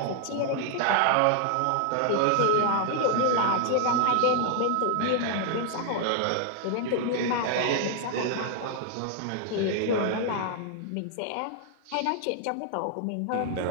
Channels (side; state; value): both; different; correlation 0.00